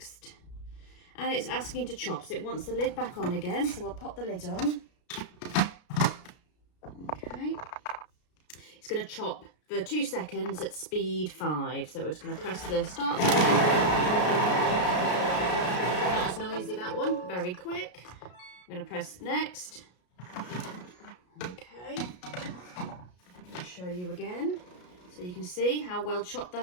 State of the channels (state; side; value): late; right; 33 ms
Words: And it's asking to chop, so it wants the lid back on again, so we'll pop the lid on. Okay. It's going to chop for 2 seconds at speed 5, so we're just going to press the start button. Not as noisy, that one, very quick. I'm going to press next. Okay, I'll show you again. So you can see how well chopped